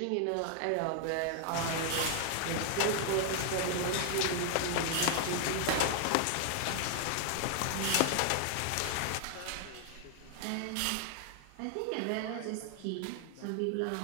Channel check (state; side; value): different; both; correlation 0.00